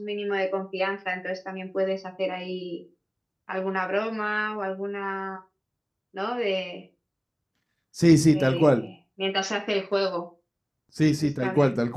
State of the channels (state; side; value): identical; both; correlation 1.00